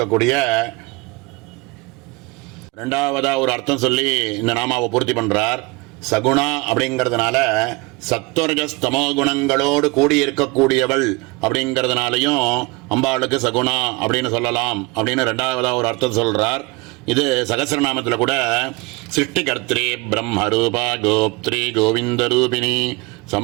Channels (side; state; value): left; quieter; 25.6 dB